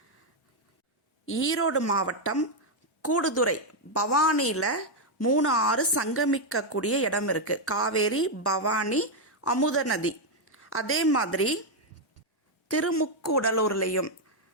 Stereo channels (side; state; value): both; normal; correlation 0.01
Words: ஈரோடு மாவட்டம் கூடுதுறை பவானியில் 3 6 சங்கமிக்கக்கூடிய இடம் இருக்குது. காவேரி, பவானி, அமுத நதி. அதே மாதிரி திருமுக்கூடலூர்லேயும்